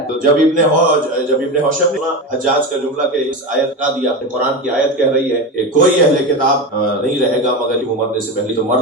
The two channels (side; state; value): both; normal; correlation 0.20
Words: تو جب ابن ہوشب نے حجاج کا جملہ کہ اس آیت کا دیا، قرآن کی آیت کہہ رہی ہے کہ کوئی اہل کتاب نہیں رہے گا مگر وہ مرنے سے پہلے تو